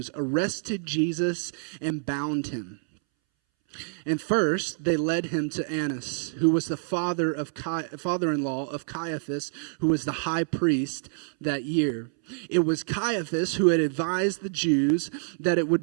arrested Jesus and bound him. And first, they led him to Annas, who was the father-in-law of Caiaphas, who was the high priest that year. It was Caiaphas who had advised the Jews that it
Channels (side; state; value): left; silent; 60 dB below the other